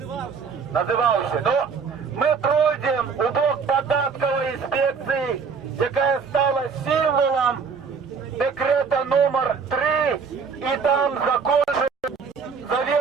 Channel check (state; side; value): quieter; left; 5.6 dB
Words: Називався. Но ми пройдемо у бок податкової інспекції, яка стала символом декрета номер 3, і там